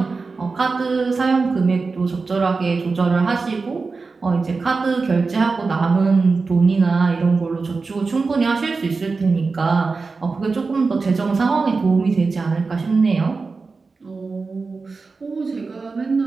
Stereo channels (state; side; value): quieter; left; 4.2 dB